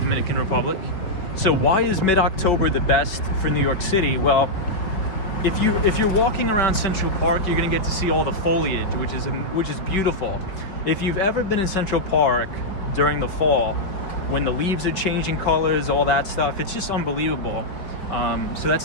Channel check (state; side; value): late; right; 4.9 ms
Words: Republic. So why is mid-October the best for New York City? Well, if you're walking around Central Park, you're gonna get to see all the foliage, which is beautiful. If you've ever been in Central Park during the fall, when the leaves are changing colors, all that stuff, it's just unbelievable. So